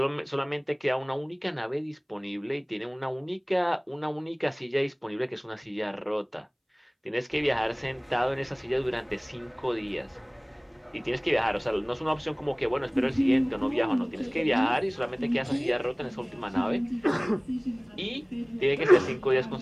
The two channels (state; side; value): identical; both; correlation 1.00